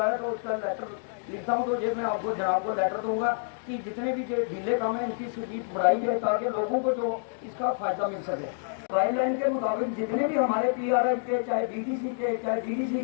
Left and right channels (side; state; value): right; silent; digital silence